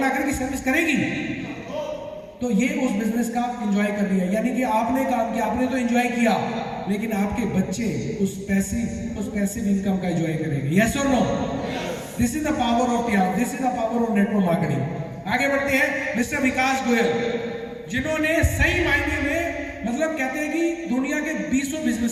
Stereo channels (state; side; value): identical; both; correlation 1.00